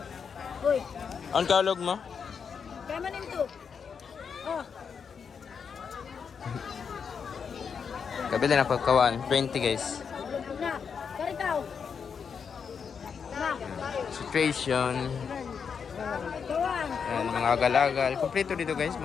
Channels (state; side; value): quieter; right; 6.4 dB